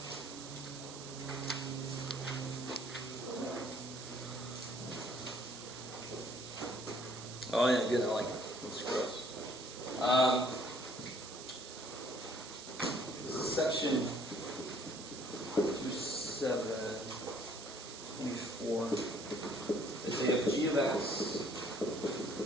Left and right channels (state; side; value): noise; right; hiss, 12 dB below the sound